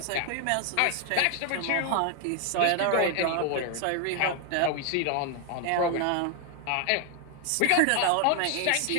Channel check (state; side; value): different; both; correlation 0.00